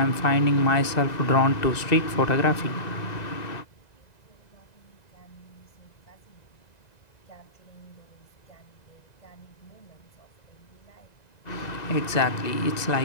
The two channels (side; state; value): right; late; 1.9 ms